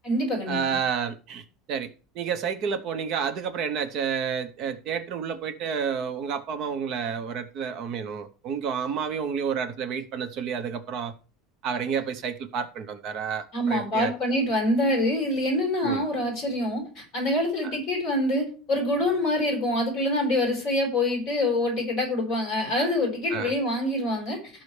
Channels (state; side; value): normal; both; correlation 0.32